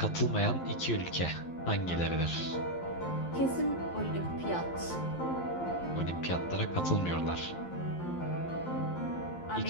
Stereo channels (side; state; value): right; late; 11 ms